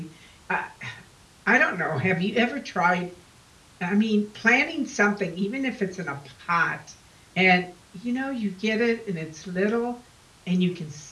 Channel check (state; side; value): identical; both; correlation 1.00